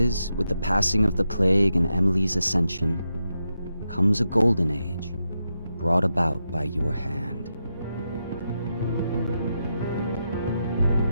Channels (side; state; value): both; inverted; correlation -0.86